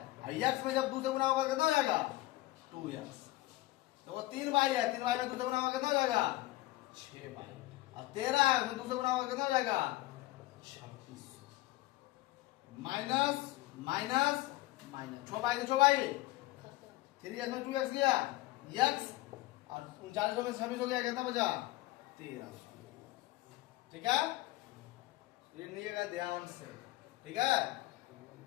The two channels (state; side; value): quieter; right; 18.2 dB